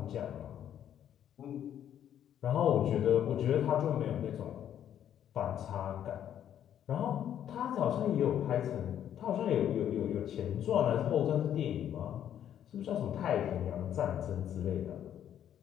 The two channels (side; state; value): right; quieter; 10.2 dB